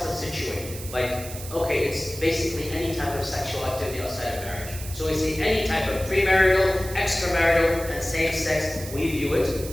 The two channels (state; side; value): noise; right; hiss, 12 dB below the sound